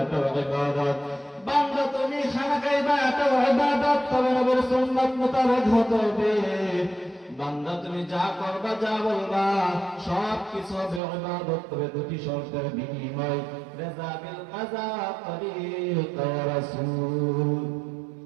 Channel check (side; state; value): left; drops out; at 11.0 s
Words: এটাও ইবাদত। বান্দা তুমি খানা খাইবা, এটাও ইবাদত, তবে নবীর সুন্নাত মোতাবেক হতে হবে। বান্দা তুমি যা করবা, যা বলবা, সব কিছু হবে ইবাদত, তবে দুটি শর্তের বিনিময়, রিজা বিল কাযা তরিকা রাসূল।